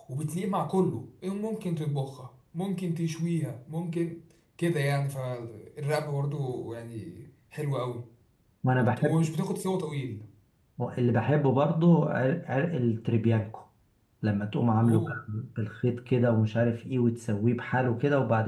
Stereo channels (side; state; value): both; identical; correlation 1.00